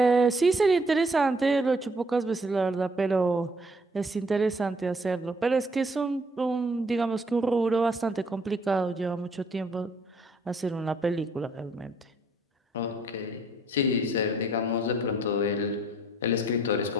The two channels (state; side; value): normal; both; correlation 0.64